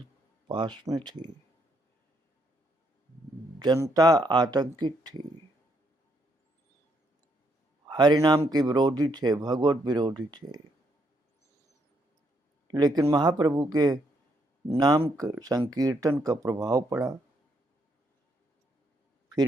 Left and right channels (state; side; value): normal; both; correlation 0.74